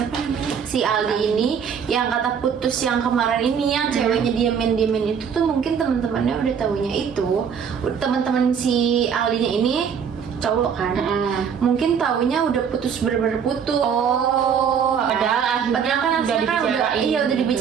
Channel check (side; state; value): left; quieter; 7.2 dB